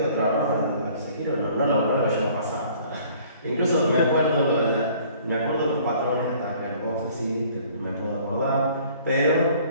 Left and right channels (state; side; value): inverted; both; correlation -0.55